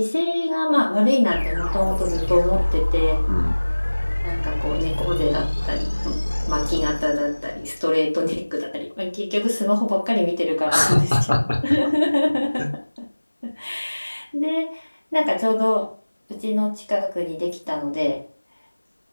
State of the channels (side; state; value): both; inverted; correlation -1.00